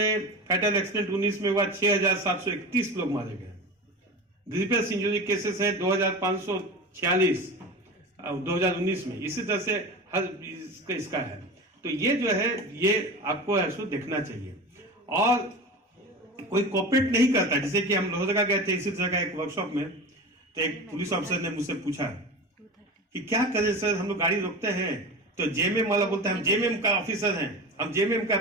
फैटल एक्सीडेंट 19 में हुआ 6,731 लोग मारे गए। ग्रीवियस इंजरी केसेस हैं 2,546 2019 में। इसी तरह से हर इसका है। तो ये जो है ये आपको ऐसा देखना चाहिए। और कोई कोऑपरेट नहीं करता, जैसे कि हम लोहरदगा गए थे इसी तरह का एक वर्कशॉप में, तो एक पुलिस ऑफिसर ने मुझसे पूछा कि क्या करें सर, हम लोग गाड़ी रोकते हैं तो जेएमएम वाला बोलता है हम जेएमएम का ऑफिसर हैं, हम जेएमएम का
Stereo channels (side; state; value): both; normal; correlation 0.30